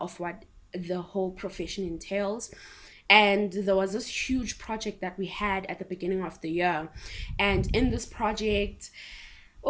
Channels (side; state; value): both; identical; correlation 1.00